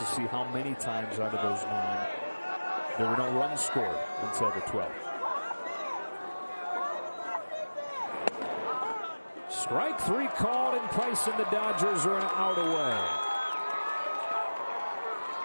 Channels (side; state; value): both; inverted; correlation -1.00